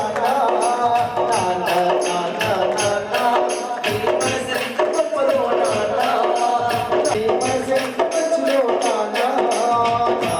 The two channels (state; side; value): identical; both; correlation 1.00